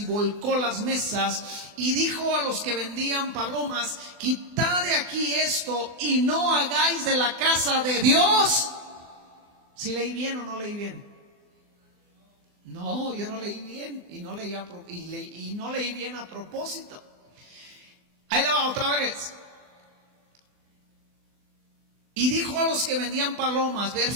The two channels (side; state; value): left; late; 24 ms